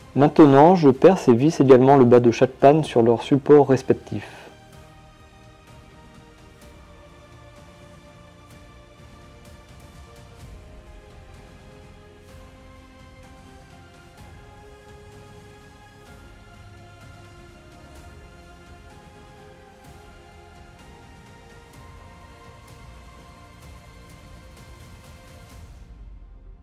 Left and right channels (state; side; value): identical; both; correlation 1.00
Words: Maintenant, je perce et visse également le bas de chaque panne sur leurs supports respectifs.